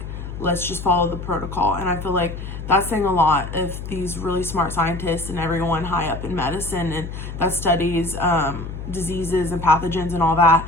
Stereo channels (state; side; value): noise; left; hum, 8 dB below the sound